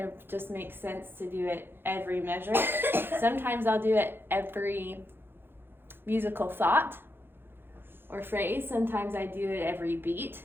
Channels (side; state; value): left; late; 0.10 ms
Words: of just makes sense to do it every measure. Sometimes I'll do it every musical thought or phrase. Sometimes I do it every beat.